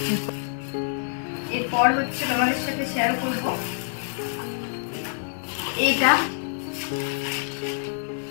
এরপর হচ্ছে তোমাদের সাথে শেয়ার করব এইটা।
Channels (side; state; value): right; silent; digital silence